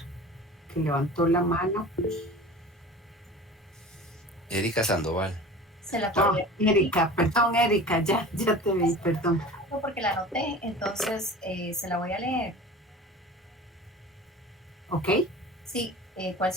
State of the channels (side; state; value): both; normal; correlation 0.39